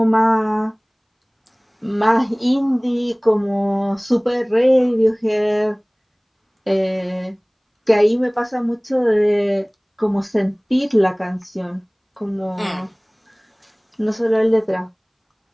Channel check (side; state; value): both; identical; correlation 1.00